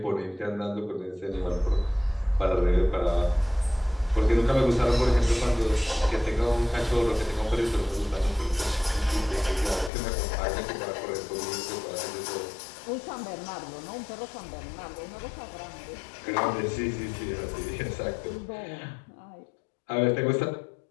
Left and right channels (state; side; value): drops out; right; at 9.9 s